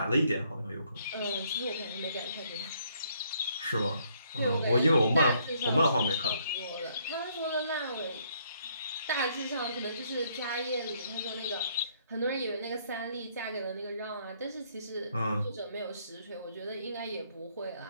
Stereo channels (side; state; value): both; inverted; correlation -0.68